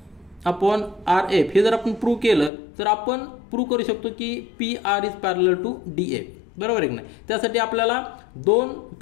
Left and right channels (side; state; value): right; drops out; at 2.5 s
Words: upon R F हे जर आपण प्रूव्ह केलं तर आपण प्रूव्ह करू शकतो की P R is parallel to D F, बरोबर आहे की नाही. त्यासाठी आपल्याला दोन